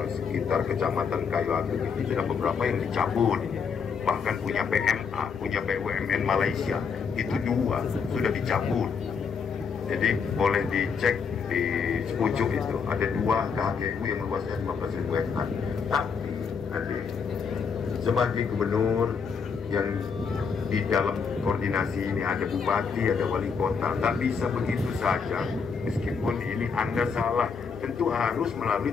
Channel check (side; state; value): right; quieter; 5.9 dB